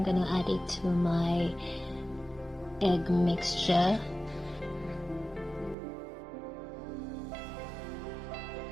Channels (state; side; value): drops out; left; at 5.8 s